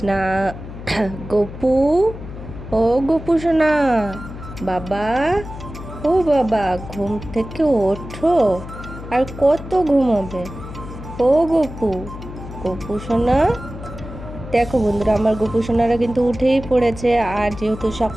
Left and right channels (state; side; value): noise; left; hum, 12 dB below the sound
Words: গপু, ও গপু সোনা, বাবা, ও বাবা, ঘুম থেকে ওঠো। আর কত ঘুমাবে? ও গপু, গপু সোনা। দেখো বন্ধুরা, আমার গোপু সোনারা কিন্তু উঠেই পড়েছে। আর যেহেতু